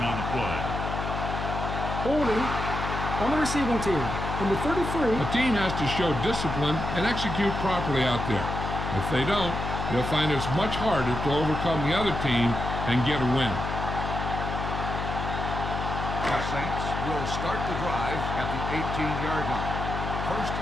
on the play. Holding on the receiving team. Number 33. A team has to show discipline and execute properly out there. If they don't, they'll find it's much harder to overcome the other team and get a win. The Saints will start the drive at the 18-yard line. 1st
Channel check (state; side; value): noise; left; hum, 4 dB below the sound